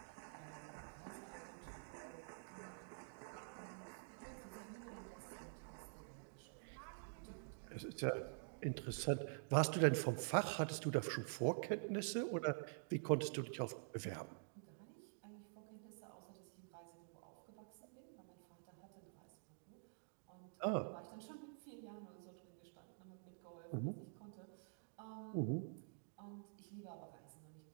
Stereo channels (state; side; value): silent; left; digital silence